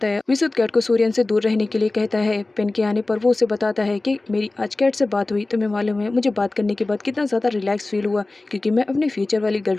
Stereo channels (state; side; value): quieter; right; 3.1 dB